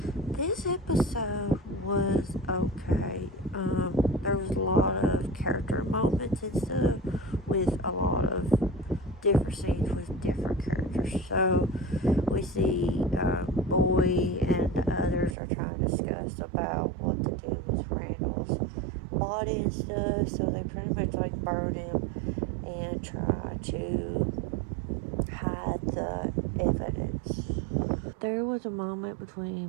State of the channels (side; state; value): left; drops out; at 15.4 s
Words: This episode was okay. There was a lot of character moments and stuff with a lot of different scenes with different characters. So we see Boy and the others are trying to discuss about what to do with Randall's body and stuff. So they pretty much like burn him and try to hide the evidence. There was a moment